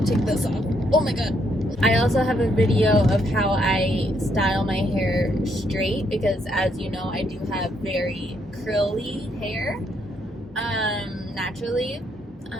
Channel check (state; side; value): normal; both; correlation 0.74